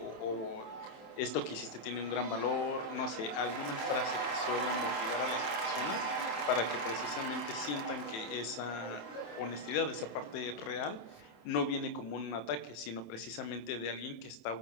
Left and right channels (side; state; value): right; late; 27 ms